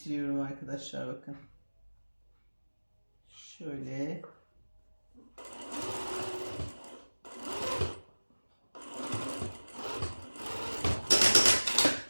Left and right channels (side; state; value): both; inverted; correlation -1.00